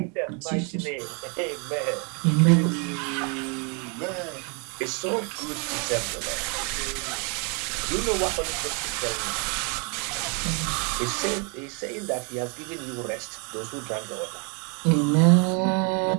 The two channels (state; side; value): quieter; left; 35.9 dB